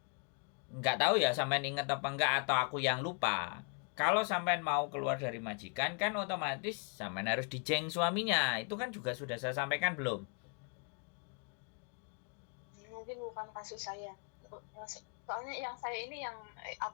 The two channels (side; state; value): right; quieter; 38.4 dB